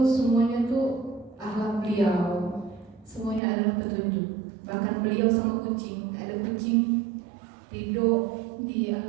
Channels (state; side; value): drops out; left; at 3.4 s